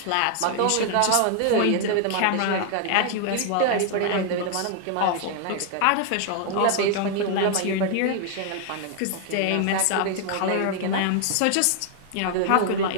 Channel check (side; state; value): both; different; correlation 0.00